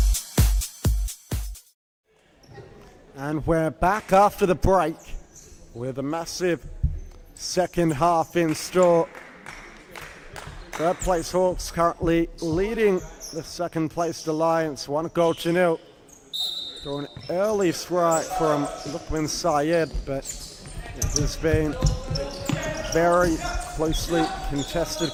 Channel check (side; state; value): both; identical; correlation 1.00